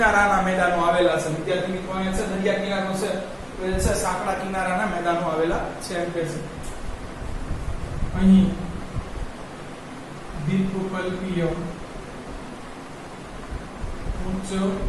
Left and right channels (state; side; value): identical; both; correlation 1.00